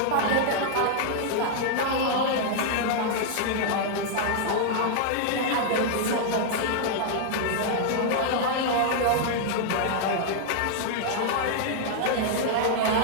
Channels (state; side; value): different; both; correlation -0.01